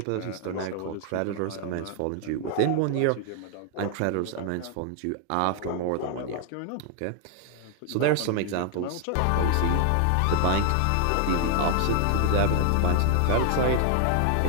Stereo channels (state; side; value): different; both; correlation 0.00